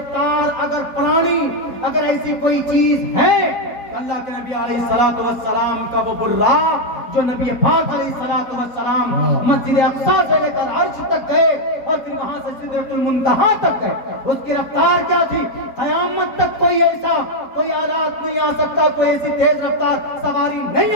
اگر پرانی، اگر ایسی کوئی چیز ہے، اللہ کے نبی علیہ الصلوۃ والسلام کا وہ براق جو نبی پاک علیہ الصلوۃ والسلام مسجد اقصیٰ سے لے کر عرش تک گئے اور پھر وہاں سے سدرۃ المنتہا تک گئے، اس کی رفتار کیا تھی؟ قیامت تک کوئی آلات نہیں آ سکتا، کوئی ایسی تیز رفتار سواری نہیں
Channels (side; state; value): right; late; 4.5 ms